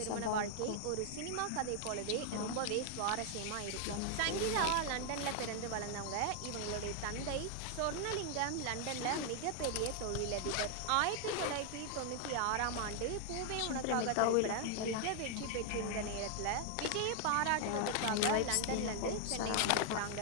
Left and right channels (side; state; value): both; different; correlation 0.00